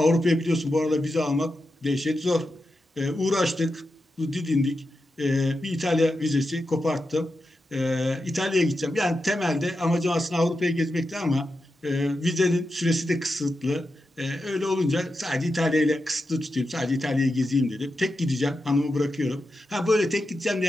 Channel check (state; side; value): normal; both; correlation 0.89